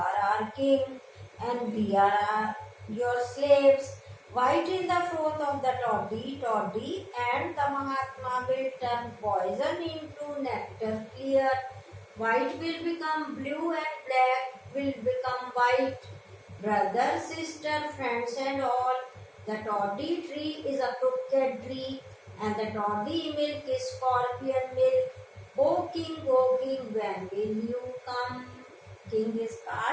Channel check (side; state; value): both; identical; correlation 1.00